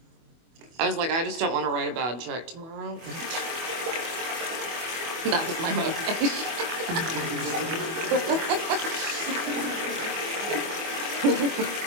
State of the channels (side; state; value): left; late; 24 ms